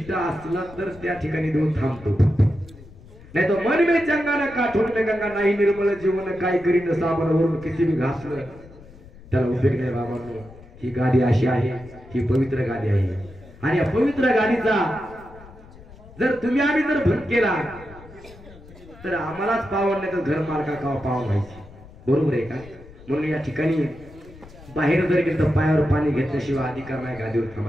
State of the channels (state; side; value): noise; left; rumble, 20 dB below the sound